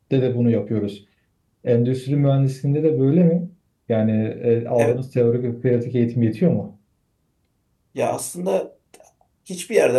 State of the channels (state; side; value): identical; both; correlation 1.00